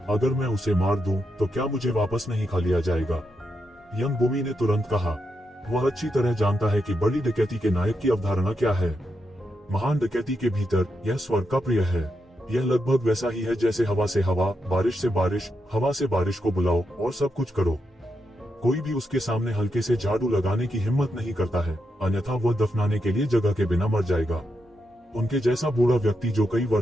अगर मैं उसे मार दूं तो क्या मुझे वापस नहीं खा लिया जाएगा? यंग बूमी ने तुरंत कहा, वह अच्छी तरह जानता है कि बड़ी डकैती के नायक की अवधारणा क्या है। महान डकैती के भीतर यह स्वर्ग का प्रिय है। यह लगभग वैसा ही है जैसे हवा से हवा, बारिश से बारिश, हवा से बारिश को बुलाओ और सब कुछ करो। कोई भी उसके सामने हल्के से झाड़ू लगाने की हिम्मत नहीं करता है, अन्यथा वह दफनाने के लिए जगह के बिना मर जाएगा। उनके जैसा बूढ़ा व्यक्ति जो कई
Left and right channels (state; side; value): normal; both; correlation 0.84